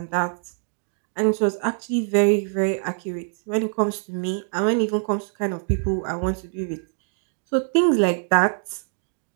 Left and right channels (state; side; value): silent; left; digital silence